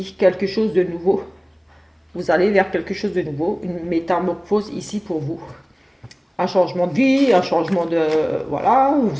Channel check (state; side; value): identical; both; correlation 1.00